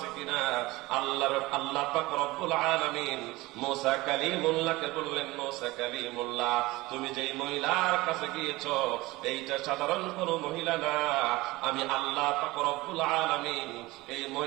কিনা? আল্লাহ পাক রব্বুল আলামিন মুসা কালিমুল্লাহকে বললেন, মুসা কালিমুল্লাহ, তুমি যেই মহিলার কাছে গিয়েছো এইটা সাধারণ কোন মহিলা না, আমি আল্লাহ পাক রব্বুল আলামিন এই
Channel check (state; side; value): quieter; left; 20.4 dB